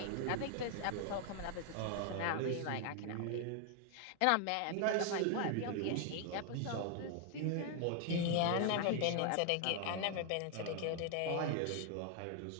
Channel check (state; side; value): different; both; correlation 0.00